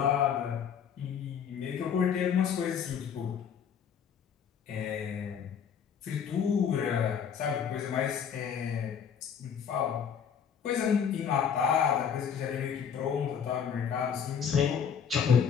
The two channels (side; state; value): right; quieter; 7.5 dB